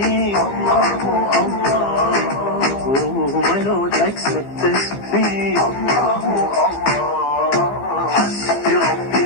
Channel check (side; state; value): right; late; 15 ms